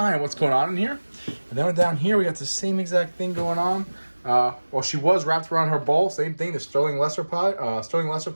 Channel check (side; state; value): both; inverted; correlation -1.00